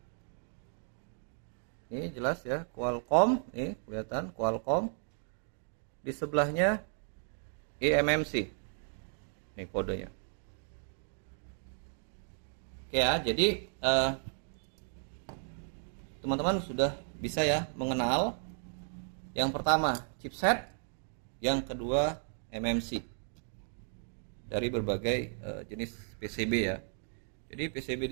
ini jelas ya, Qualcomm, nih kelihatan Qualcomm. Di sebelahnya eMMC, nih kodenya. Oke ya, jadi teman-teman sudah bisa ya mengenal yang pertama chipset, yang kedua MMC. Dari berbagai jenis PCB ya. Jadi PCB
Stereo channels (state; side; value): silent; left; 55 dB below the other